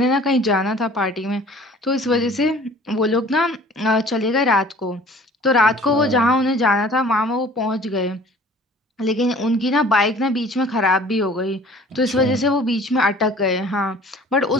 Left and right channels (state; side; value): normal; both; correlation 0.50